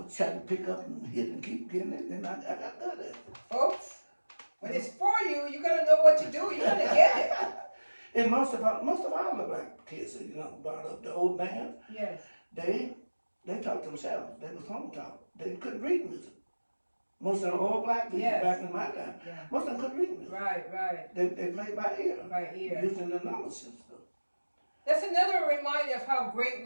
trying to pick up and hit and keep getting it, and I got good at it. Folks, when it's for you, you gotta know what to do. You gotta get it. And most of all the black kids, brought up the old band, Yes. they taught themselves. They was home taught. They couldn't read music. Most of the old black people Yes. back in my time, Yeah. most of them couldn't read music. Right. They played by ear. By ear. Using the number system. That's another reminder of how great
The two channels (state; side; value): inverted; both; correlation -1.00